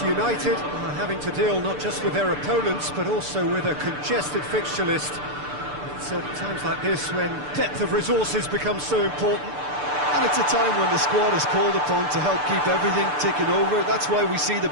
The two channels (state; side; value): late; left; 6.8 ms